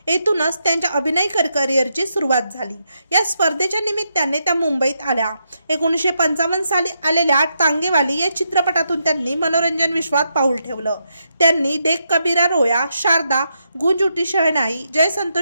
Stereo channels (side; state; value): both; inverted; correlation -0.81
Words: येथूनच त्यांच्या अभिनय करिअरची सुरुवात झाली। या स्पर्धेच्या निमित्ताने त्या मुंबईत आल्या। 1955 साली आलेल्या टांगेवाली या चित्रपटातून त्यांनी मनोरंजन विश्वात पाऊल ठेवलं। त्यांनी देख कबीरा रोया, शारदा, गूंज उठी शहनाई, जय